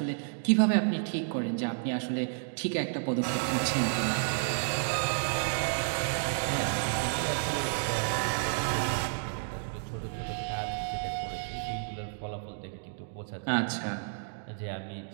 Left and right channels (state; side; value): silent; left; digital silence